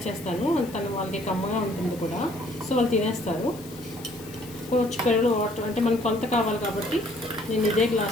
చేస్తాను. తను వాళ్ళకి కమ్మగా ఉంటుంది కూడా, సో వాళ్ళు తినేస్తారు. కొంచెం పెరుగు వాటర్ అంటే మనకు కొంత కావాలి కాబట్టి నేను ఇదే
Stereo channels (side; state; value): left; noise; hiss, 19 dB below the sound